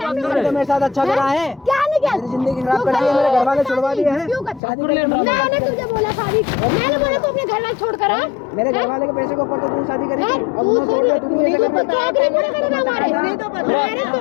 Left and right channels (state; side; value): drops out; right; at 4.6 s